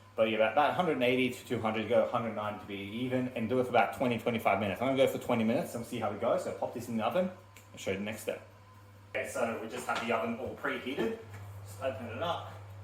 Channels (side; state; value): both; identical; correlation 1.00